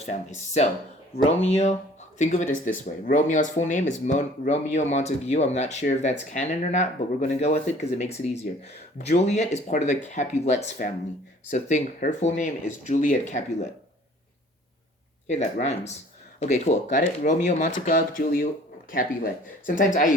family. So Romeo think of it as this way. Romeo's full name is Romeo Montague. I'm not sure if that's canon or not, but we're going to go with it because it makes it easier. Juliet is part of the Capulets family. So think her full name is Juliet Capulet. Hey, that rhymes. Okay, cool. Got it? Romeo Montague, Julia Capulet. Sometimes I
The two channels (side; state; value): both; normal; correlation 0.52